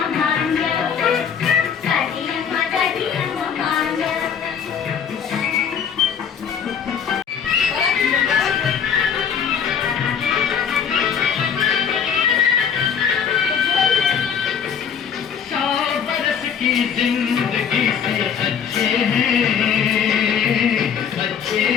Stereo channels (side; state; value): right; quieter; 7.5 dB